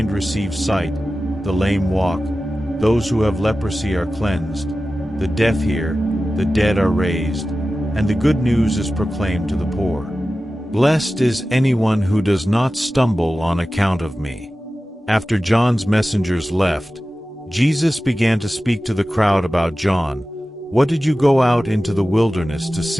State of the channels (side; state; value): both; normal; correlation 0.95